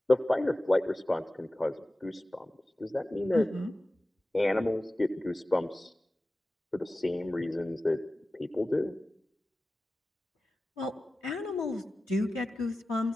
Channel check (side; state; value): both; normal; correlation 0.96